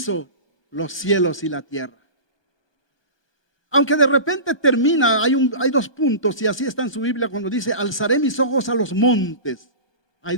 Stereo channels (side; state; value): right; late; 1.2 ms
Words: los cielos y la tierra. Aunque de repente termina, hay dos puntos, y así está en su Biblia cuando dice: alzaré mis ojos a los montes. Hay